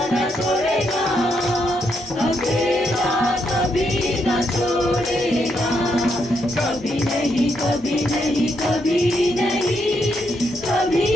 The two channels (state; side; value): normal; both; correlation 0.78